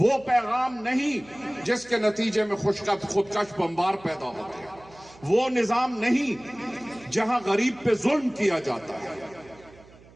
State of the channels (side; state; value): right; noise; hum, 24 dB below the sound